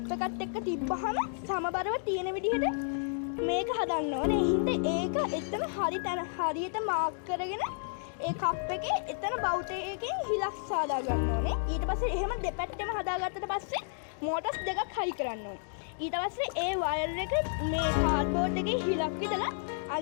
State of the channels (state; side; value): silent; right; digital silence